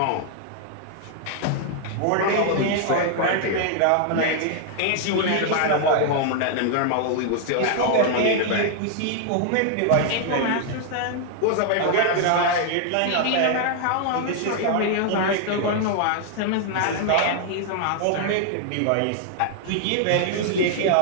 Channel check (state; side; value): different; both; correlation 0.00